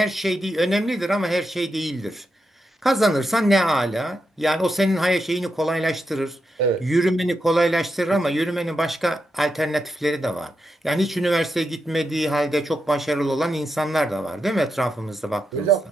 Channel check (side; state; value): both; normal; correlation 0.86